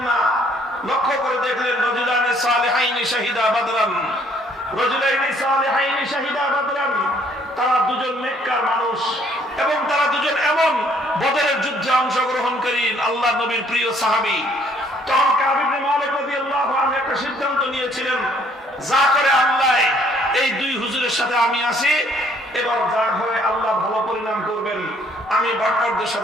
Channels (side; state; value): both; normal; correlation 0.63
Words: না, লক্ষ্য করে দেখলেন রজুলানে সালিহাইনি শাহিদা বাদরান, রজুলাইনি সালিহাইনি শাহিদা বাদরান, তারা 2 জন নেককার মানুষ এবং তারা 2 জন এমন বদরের যুদ্ধে অংশগ্রহণকারী আল্লাহর নবীর প্রিয় সাহাবী। তখন কাব ইবনে মালিক রাদিয়াল্লাহু আনহু একটা সিদ্ধান্ত নিয়েছিলেন, যা করে আল্লাহ, এই 2 হুজুরের সাথে আমি আছি, এবার যা হয় আল্লাহ ভালো পরিণাম করবেন, আমি বাটপারদের